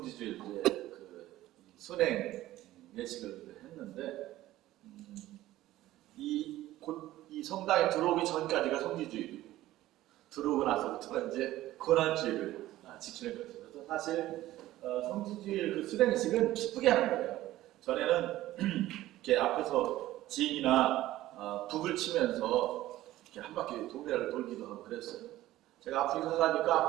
그 순행 예식을 했는데 이 성당에 들어오기 전까지가 성지주일이고 들어오고 나서부터는 이제 고난주일을 지키는 거죠. 그래서 사실 성지주일 그 수행식은 기쁘게 하는 거예요. 전에는 이렇게 앞에서 지인이나 북을 치면서 이렇게 한 바퀴 동네를 돌기도 하고 그랬어요. 제가 아프리카 가니까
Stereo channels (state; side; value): quieter; left; 15.4 dB